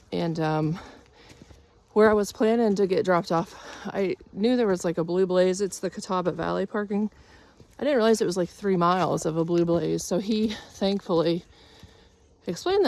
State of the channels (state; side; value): identical; both; correlation 1.00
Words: And where I was planning to get dropped off, I knew there was like a Blue Blaze. It's the Catawba Valley parking. I didn't realize it was like 3 miles of a Blue Blaze. So he thankfully explained